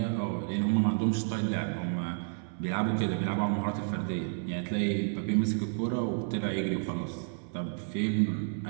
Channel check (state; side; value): silent; left; 57 dB below the other